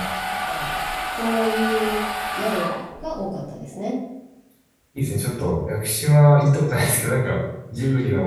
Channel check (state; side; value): identical; both; correlation 1.00